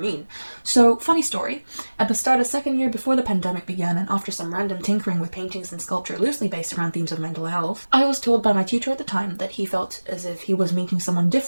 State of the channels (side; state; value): both; inverted; correlation -1.00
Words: So, funny story, at the start of second year before the pandemic began and after some random tinkering with paintings and sculpture loosely based around themes of mental health, I was told by my tutor at the time that he felt as if he was meeting someone